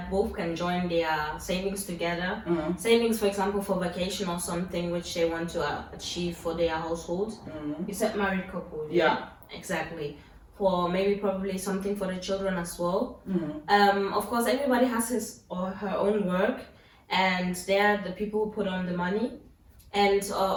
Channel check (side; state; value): both; identical; correlation 1.00